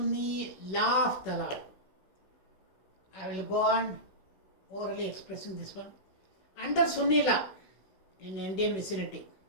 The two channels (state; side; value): late; right; 16 ms